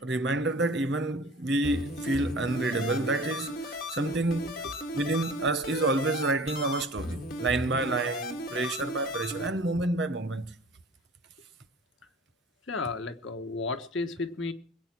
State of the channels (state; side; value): normal; both; correlation 0.44